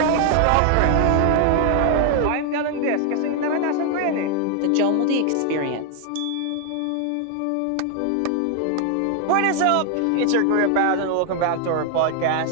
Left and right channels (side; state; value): both; different; correlation 0.00